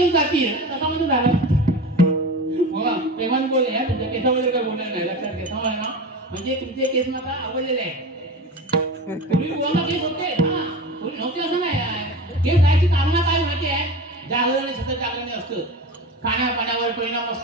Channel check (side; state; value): both; normal; correlation 0.30